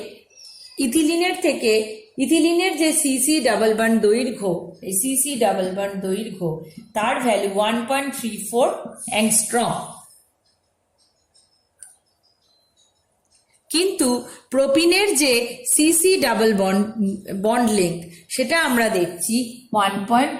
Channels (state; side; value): identical; both; correlation 1.00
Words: ইথিলিনের যে সিসি ডাবল বন্ড দৈর্ঘ্য, এই সিসি ডাবল বন্ড দৈর্ঘ্য তার ভ্যালু 1.34 অ্যাংস্ট্রম, কিন্তু প্রোপিনের যে সিসি ডাবল বন্ড লেংথ সেটা আমরা দেখছি